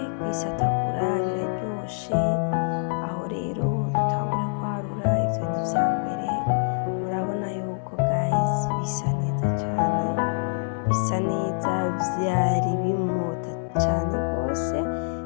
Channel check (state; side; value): silent; right; 61 dB below the other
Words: kwisatagura, biraryoshe. Aho rero dutangura kwarura, ivyo ni ivya mbere. Murabona yuko guys bisa neza cane, bisa neza, vyari bimota cane rwose,